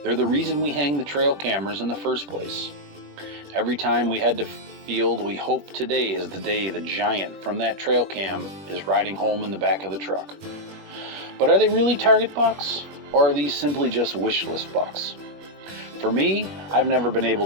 They're the reason we hang the trail cameras in the first place. Every time we head to field, we hope today is the day the giant from that trail cam is riding home in the back of the truck. But are they really target bucks, or are these simply just wish list bucks? For me, I've never been able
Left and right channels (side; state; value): left; late; 21 ms